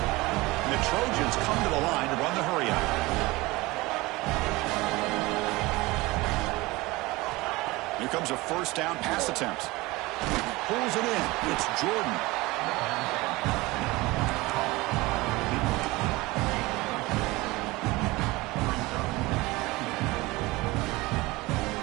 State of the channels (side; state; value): left; quieter; 21.5 dB